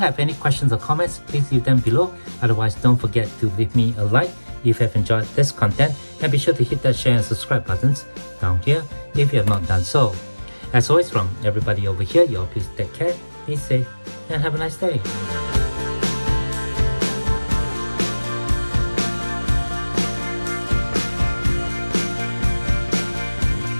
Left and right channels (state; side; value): inverted; both; correlation -1.00